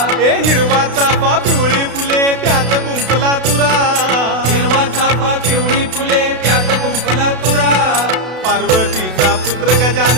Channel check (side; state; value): left; late; 32 ms